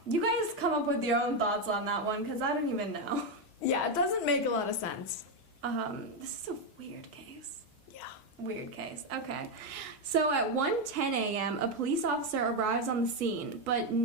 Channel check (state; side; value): normal; both; correlation 0.06